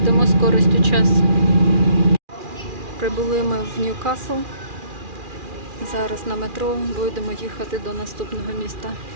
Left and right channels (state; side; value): late; left; 2.4 ms